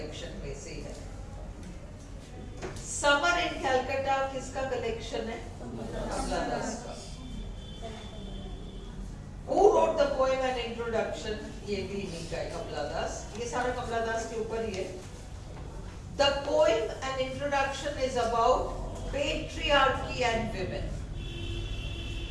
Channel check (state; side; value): identical; both; correlation 1.00